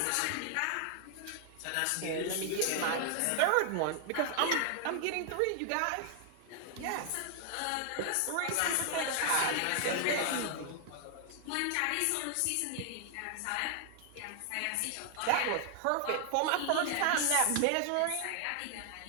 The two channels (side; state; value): both; different; correlation 0.00